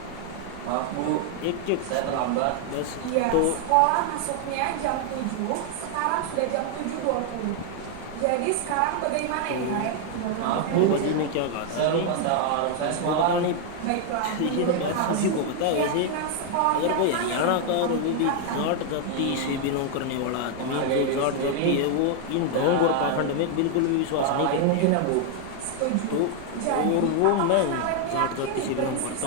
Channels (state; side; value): different; both; correlation 0.00